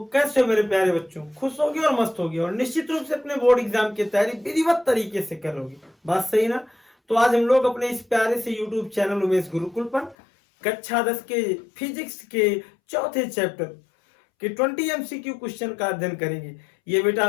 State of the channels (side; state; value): right; drops out; at 10.2 s